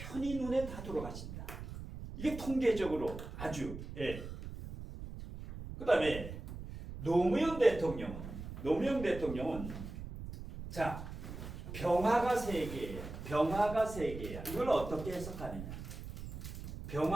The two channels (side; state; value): right; noise; rumble, 9 dB below the sound